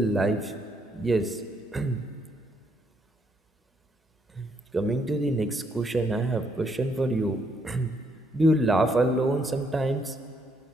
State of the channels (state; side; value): normal; both; correlation 0.72